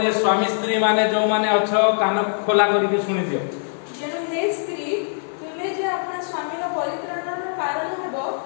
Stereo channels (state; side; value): silent; right; digital silence